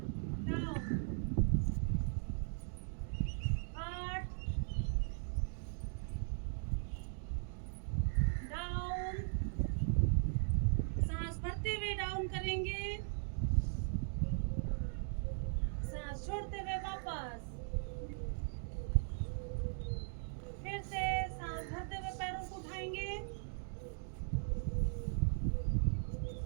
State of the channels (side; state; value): left; silent; 52 dB below the other